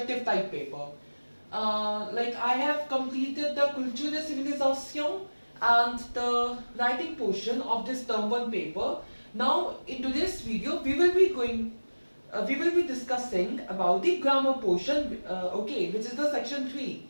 type paper. Like I have completed the Culture de Civilisation and the writing portion of this term 1 paper. Now in today's video we will be discussing about the grammar portion, okay, which is the section 3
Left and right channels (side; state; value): both; inverted; correlation -1.00